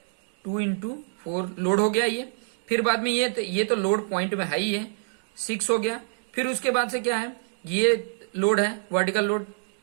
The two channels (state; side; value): silent; left; digital silence